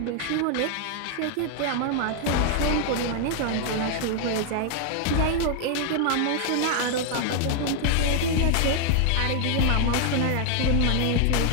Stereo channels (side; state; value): both; different; correlation 0.00